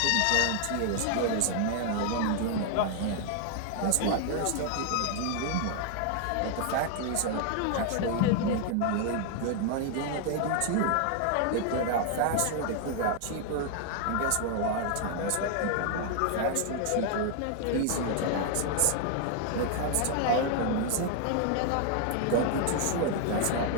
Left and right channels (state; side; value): different; both; correlation 0.00